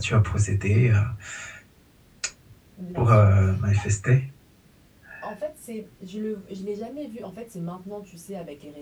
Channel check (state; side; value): identical; both; correlation 1.00